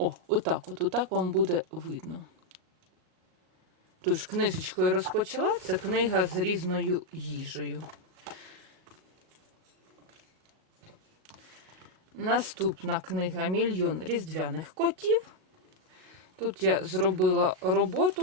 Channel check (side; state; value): left; late; 38 ms